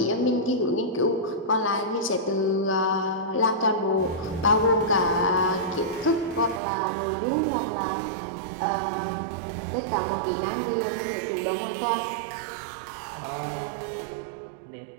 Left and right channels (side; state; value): left; drops out; at 6.6 s